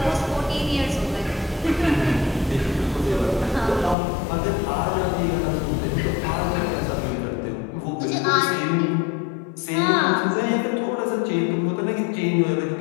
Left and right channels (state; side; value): drops out; right; at 4.0 s